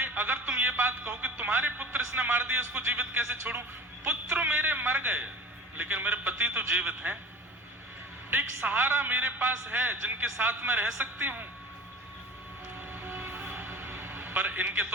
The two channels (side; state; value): both; normal; correlation 0.39